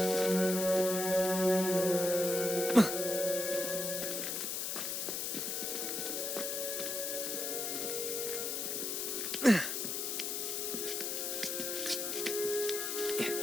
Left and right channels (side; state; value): left; noise; hiss, 2 dB below the sound